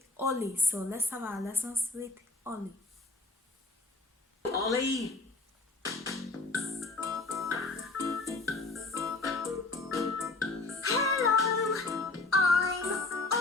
Ollie. So let's have our lessons with Ollie. Ollie!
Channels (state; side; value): quieter; right; 3.3 dB